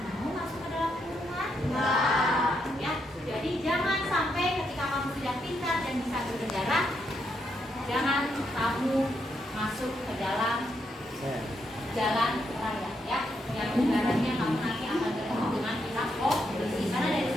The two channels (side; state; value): both; normal; correlation 0.79